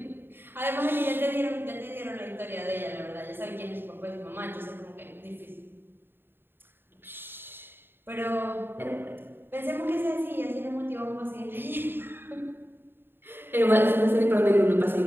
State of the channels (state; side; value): late; left; 0.10 ms